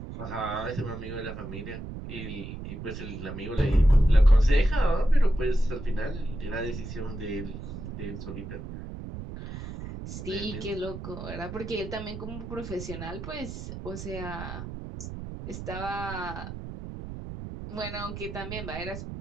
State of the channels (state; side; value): noise; right; rumble, 9 dB below the sound